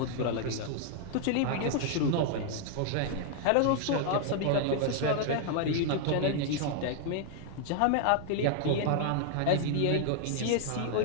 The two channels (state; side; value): different; both; correlation 0.00